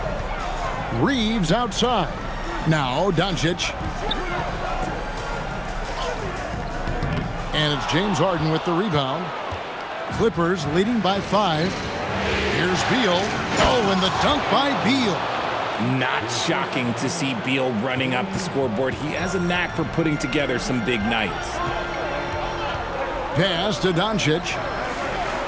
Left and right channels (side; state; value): both; identical; correlation 1.00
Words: Reeves outside. Now Doncic. And it's James Harden with the rebound. Clippers leading by 5. Here's Beal. Oh, and the dunk by Beal. Not shocking to see Beal running up the scoreboard. He has a knack for putting together some big nights. Pass to Doncic.